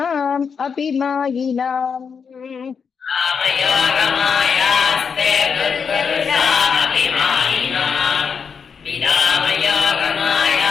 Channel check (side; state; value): right; quieter; 6.2 dB